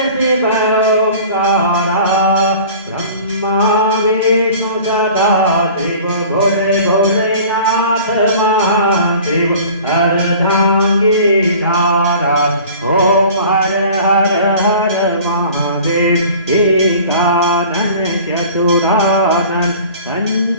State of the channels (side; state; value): both; inverted; correlation -0.44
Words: शिव ओंकार ब्रह्मा विष्णु सदा शिव भोले भोलेनाथ महादेव अर्धांगी धारा ओम हर हर हर महादेव एकानन चतुरानन